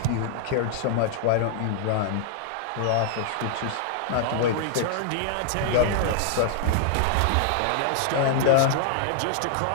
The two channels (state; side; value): different; both; correlation -0.01